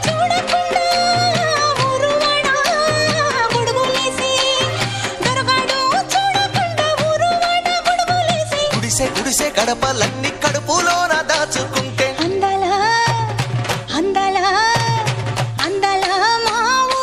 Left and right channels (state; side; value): identical; both; correlation 1.00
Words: చూడకుండా ఊరువాడ గొడుగులేసి దొరగాడు చూడకుండా ఊరువాడ గొడుగులేసి గుడిసె గుడిసె గడపలన్నీ కడుపులోన దాచుకుంటే అందాల అందాల అందాల మా